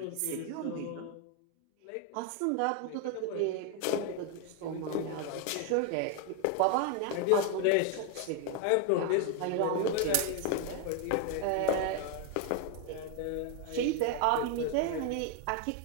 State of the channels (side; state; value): both; different; correlation 0.01